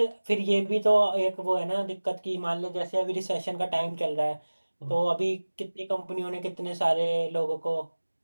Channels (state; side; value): inverted; both; correlation -1.00